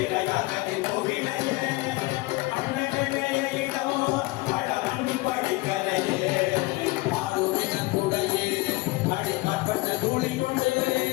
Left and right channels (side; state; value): right; quieter; 22.0 dB